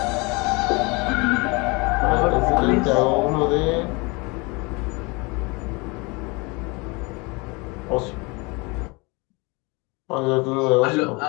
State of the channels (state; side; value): quieter; right; 27.4 dB